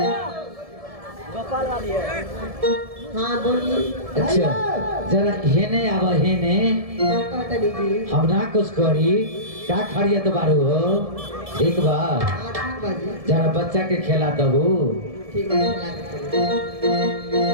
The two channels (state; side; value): late; left; 1.7 ms